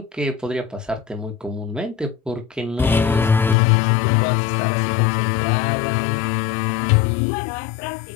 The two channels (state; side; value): drops out; right; at 3.6 s